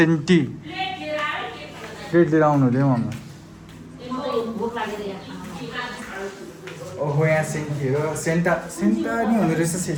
प्लेट लिएर आउनु हुँदै मम्मी ओहो यहाँ सेन्टीहरू सेन्टा सेन्टा नि हुँदो रहेछ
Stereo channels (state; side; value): identical; both; correlation 1.00